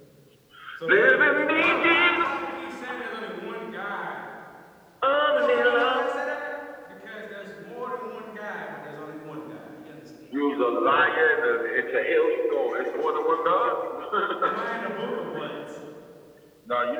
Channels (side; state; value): both; identical; correlation 1.00